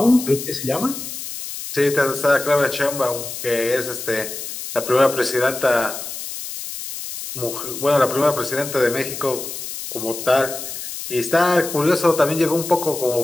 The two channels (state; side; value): noise; left; hiss, 8 dB below the sound